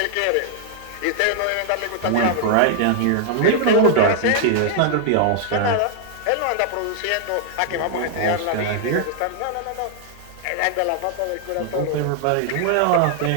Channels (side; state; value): both; different; correlation -0.01